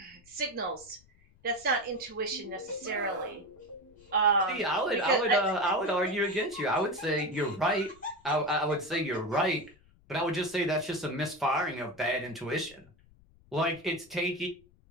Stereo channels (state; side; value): noise; left; rumble, 28 dB below the sound